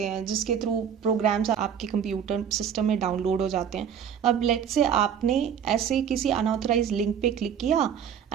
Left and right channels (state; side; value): quieter; left; 8.3 dB